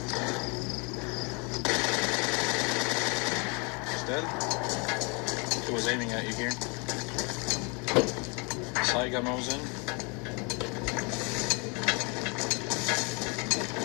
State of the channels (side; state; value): right; quieter; 31.7 dB